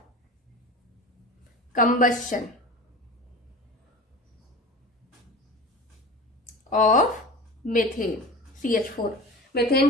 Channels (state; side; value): normal; both; correlation 0.33